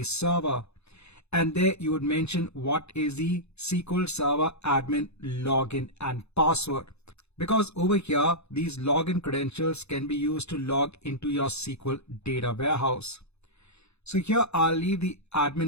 server. And there you would mention what is the SQL Server admin login and password. Because over here, these login credentials can be used to log into your SQL data warehouse. So here I'll leave the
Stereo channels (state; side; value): late; right; 0.80 ms